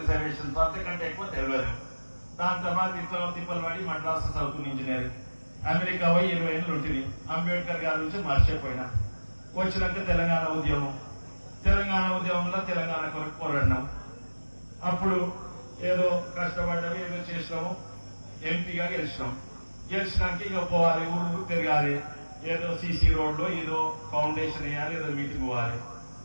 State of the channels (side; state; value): both; inverted; correlation -1.00